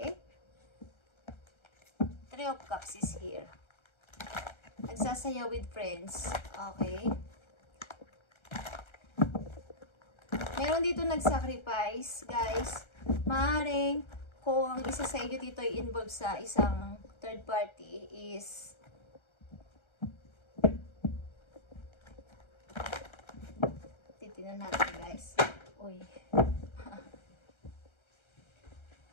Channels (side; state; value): right; late; 1.3 ms